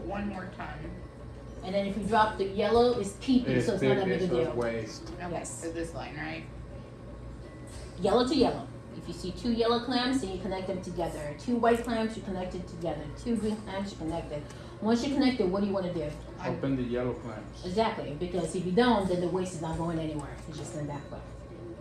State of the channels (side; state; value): both; identical; correlation 1.00